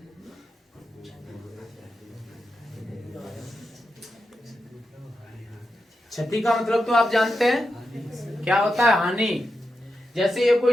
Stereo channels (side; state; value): both; normal; correlation 0.88